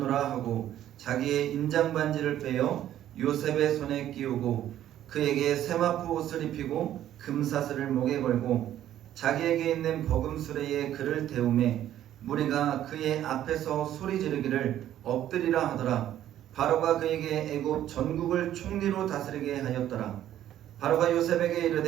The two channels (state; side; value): quieter; left; 11.9 dB